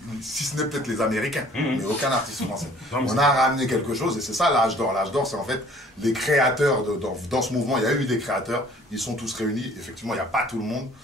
si ce n'est peut-être les Américains, mais aucun artiste français. Non, on a ramené quelque chose et c'est ça l'âge d'or. L'âge d'or, c'est en fait les créateurs dans ce mouvement. Il y a eu des créateurs, ils sont tous réunis. Effectivement, il n'y a pas tout le monde,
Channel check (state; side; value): normal; both; correlation 0.54